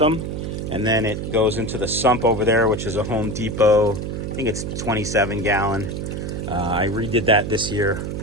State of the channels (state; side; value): noise; right; hum, 4 dB below the sound